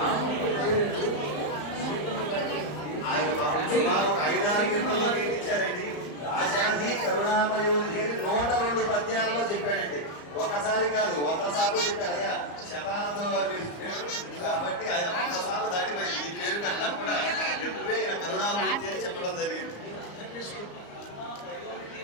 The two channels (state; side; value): late; right; 34 ms